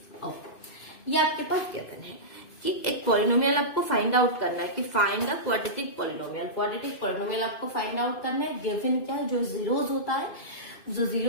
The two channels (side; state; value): right; late; 2.5 ms